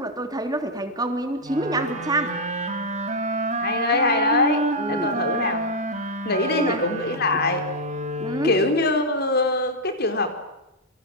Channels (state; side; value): normal; both; correlation -0.04